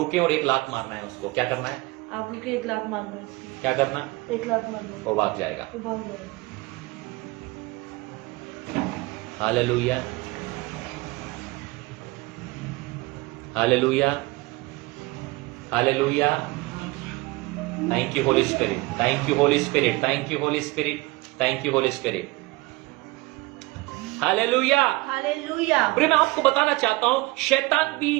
और एक लात मारना है उसको। क्या करना है? आप रुके, एक लात मारना उसकी, क्या करना? एक लात मारना, वो भाग जाएगा। वो भाग जाएगा। Hallelujah, hallelujah, hallelujah. Thank you Holi spirit, thank you Holi spirit, thank you Holi spirit, thank you Holi spirit. Hallelujah. Hallelujah. प्रिय, मैं आपको बताना चाहता हूं, शैतान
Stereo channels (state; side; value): quieter; left; 22.7 dB